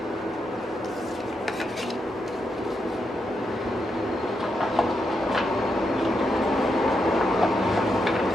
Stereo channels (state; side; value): normal; both; correlation 0.83